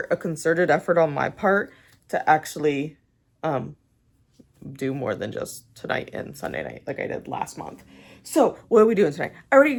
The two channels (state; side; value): identical; both; correlation 1.00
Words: a concerted effort on my part, to actually do more than just tonight and Sunday night like I did last month. So what are we doing tonight? I